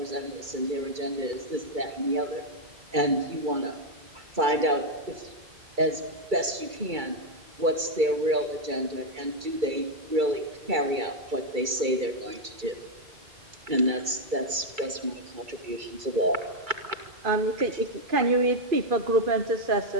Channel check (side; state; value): left; late; 2.3 ms